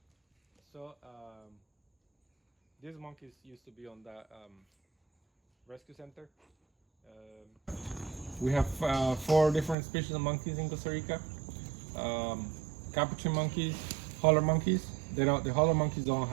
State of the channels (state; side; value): drops out; left; at 9.8 s